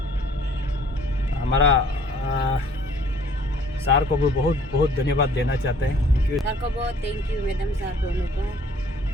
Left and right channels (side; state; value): both; normal; correlation 0.56